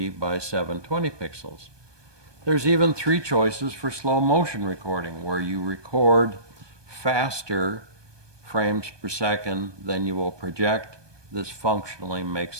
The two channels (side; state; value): left; late; 1.2 ms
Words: by 720 pixels. There's even 3 choices for slow motion recording, where you record faster frames per second than you will project. This functionally